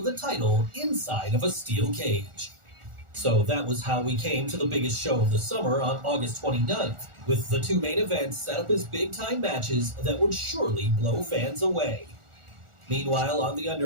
the title inside of a steel cage. So that was how we came to the biggest show of the summer on August 29th, with the two main events set up as big-time matches that would surely blow fans away. Meanwhile, on the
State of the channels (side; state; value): left; late; 1.4 ms